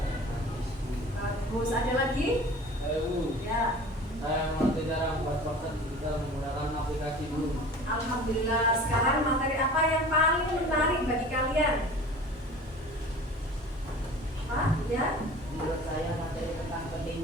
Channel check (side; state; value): both; normal; correlation 0.41